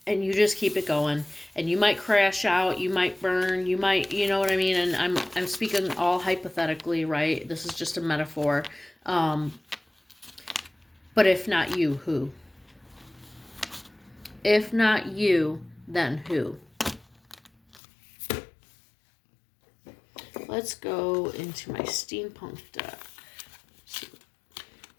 and you just keep it going, and you might crash out, you might burn, you might, you know what I mean, and I'm speaking all hypothetically, right? This is just a metaphor. But if not you, who? If not you, then who? Let's go into my steampunk deck.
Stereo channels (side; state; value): right; drops out; at 17.8 s